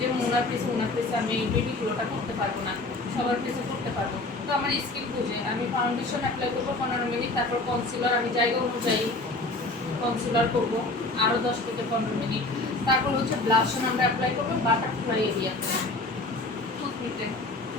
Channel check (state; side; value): quieter; right; 3.0 dB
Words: ওনার ফেসে আমি বেবি গ্লোটা করতে পারবো না, সবার ফেসে করতে পারবো। তো আমার স্কিন বুঝে আমি ফাউন্ডেশন অ্যাপ্লাই করবো 15 মিনিট, তারপর কনসিলার আমি জায়গা অনুযায়ী কনসিলার করবো আরও 10 থেকে 15 মিনিট। তারপর হচ্ছে ব্লাশন আমরা অ্যাপ্লাই করবো বাটারফ্লাই এরিয়াতে, টুথপিকে